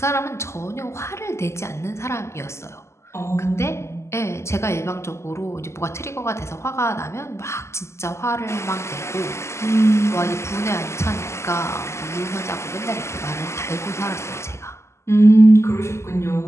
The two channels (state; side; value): late; right; 0.13 ms